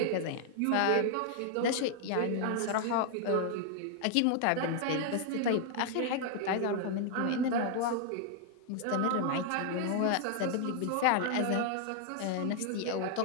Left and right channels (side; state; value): both; different; correlation 0.00